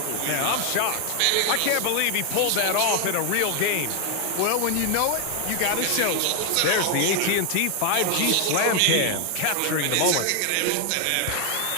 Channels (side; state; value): both; different; correlation 0.00